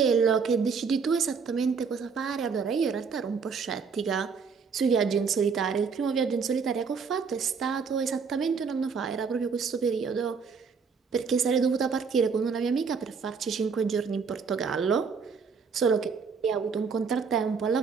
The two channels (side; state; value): left; quieter; 5.6 dB